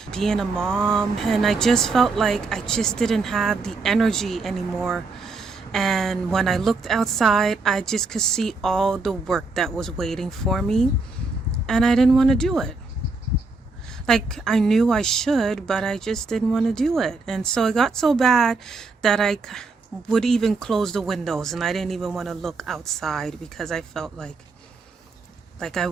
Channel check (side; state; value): left; quieter; 3.7 dB